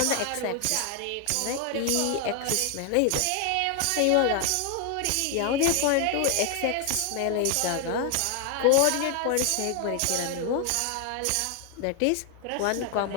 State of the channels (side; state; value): both; different; correlation 0.00